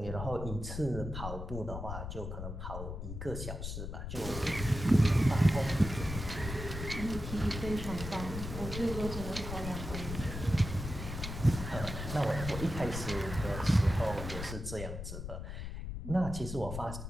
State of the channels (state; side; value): noise; left; rumble, 6 dB below the sound